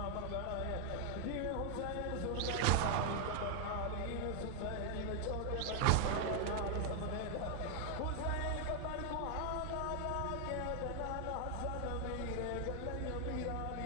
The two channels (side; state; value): both; different; correlation 0.00